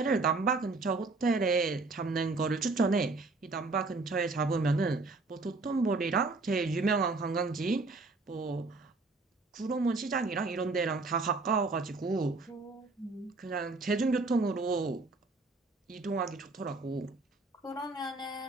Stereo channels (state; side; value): quieter; left; 3.6 dB